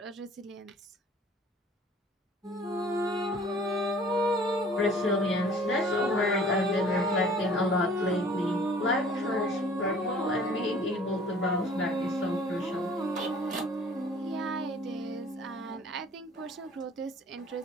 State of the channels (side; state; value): both; normal; correlation 0.51